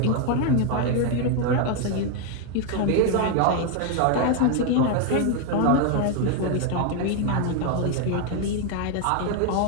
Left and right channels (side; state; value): both; different; correlation 0.01